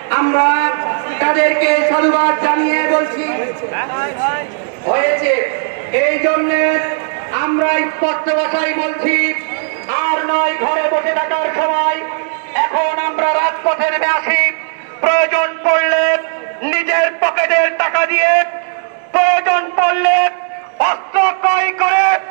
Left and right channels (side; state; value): left; silent; 68 dB below the other